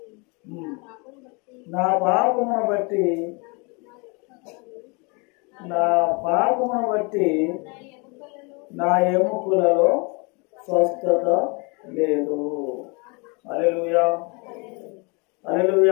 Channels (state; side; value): quieter; right; 31.0 dB